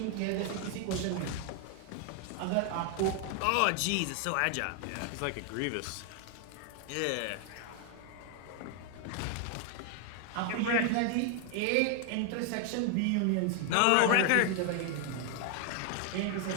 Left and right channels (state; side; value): different; both; correlation 0.00